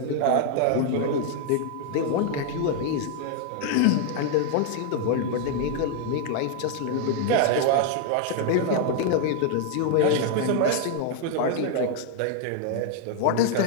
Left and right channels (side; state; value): both; different; correlation 0.00